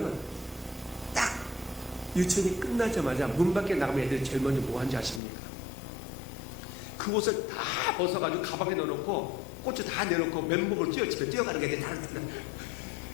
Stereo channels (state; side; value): drops out; right; at 5.2 s